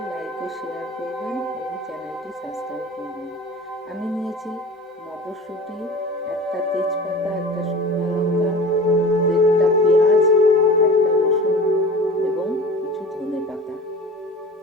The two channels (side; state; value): both; normal; correlation 0.38